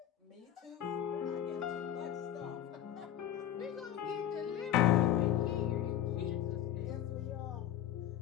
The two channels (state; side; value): quieter; right; 11.2 dB